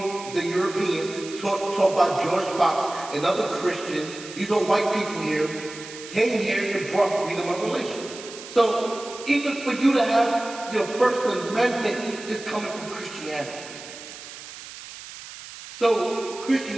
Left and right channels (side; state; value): right; noise; hiss, 14 dB below the sound